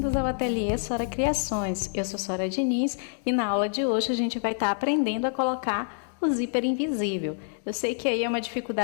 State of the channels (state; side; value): silent; right; digital silence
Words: ao Ateliê Sora Criações. Eu sou Sora Diniz e na aula de hoje a gente vai estar aprendendo a colocar o zíper invisível. Eu sei que aí é uma